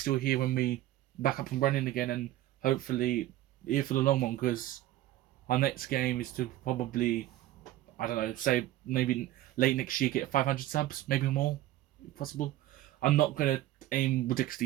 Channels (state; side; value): quieter; left; 14.6 dB